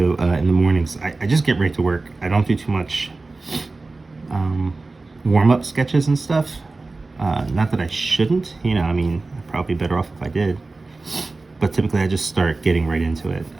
in the mornings. I just get right to work. I don't do too much warm-up sketches and stuff. Not that I shouldn't, you know, I mean, I'd probably be better off if I did. But typically I just start getting right into it.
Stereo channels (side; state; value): left; quieter; 3.5 dB